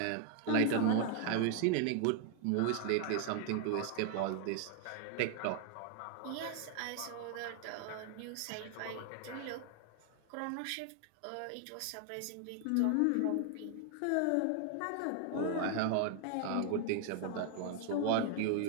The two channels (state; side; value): different; both; correlation 0.00